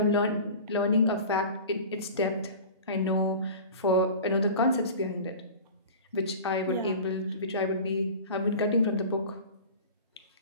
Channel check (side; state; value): both; inverted; correlation -0.36